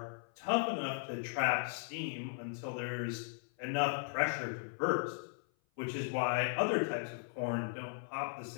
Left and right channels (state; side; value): silent; right; 53 dB below the other